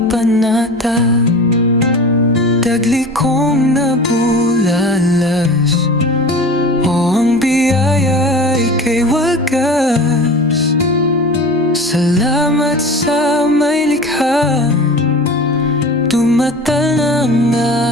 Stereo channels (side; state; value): both; normal; correlation 0.36